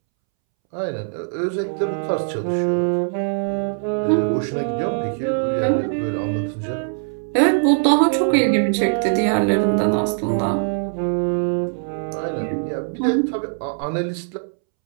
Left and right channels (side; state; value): left; silent; 65 dB below the other